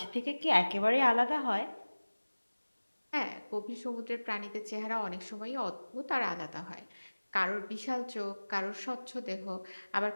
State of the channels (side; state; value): both; inverted; correlation -1.00